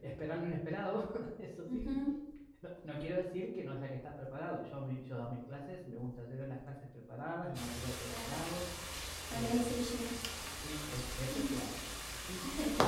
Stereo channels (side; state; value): both; identical; correlation 1.00